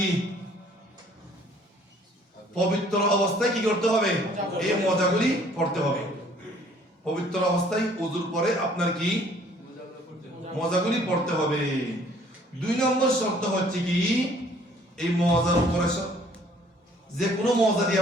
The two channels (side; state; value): both; normal; correlation 0.58